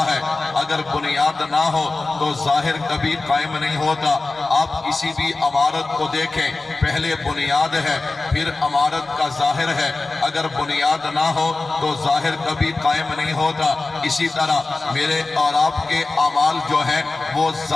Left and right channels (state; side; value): quieter; right; 3.4 dB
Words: ہے، اگر بنیاد نہ ہو تو ظاہر کبھی قائم نہیں ہوتا۔ آپ کسی بھی عمارت کو دیکھیں، پہلے بنیاد ہے پھر عمارت کا ظاہر ہے، اگر بنیاد نہ ہو تو ظاہر کبھی قائم نہیں ہوتا۔ اسی طرح میرے اور آپ کے اعمال جو ہیں وہ